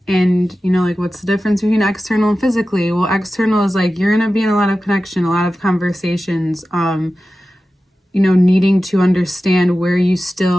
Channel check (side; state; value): both; normal; correlation 0.94